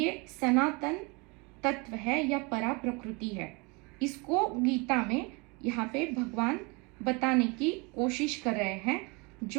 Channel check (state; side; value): quieter; left; 28.7 dB